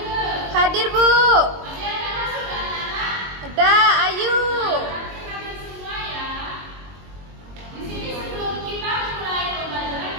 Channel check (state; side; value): late; left; 22 ms